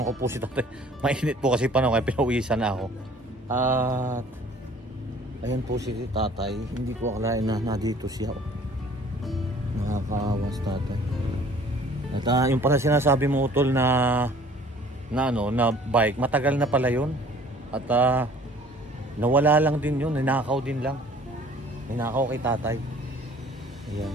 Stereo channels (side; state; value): both; normal; correlation 0.52